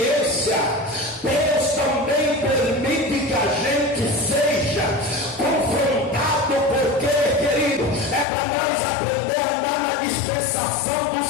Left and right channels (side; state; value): right; drops out; at 8.2 s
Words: Deus também permite que a gente seja confrontado, porque, querido, é para nós aprender a andar na dispensação do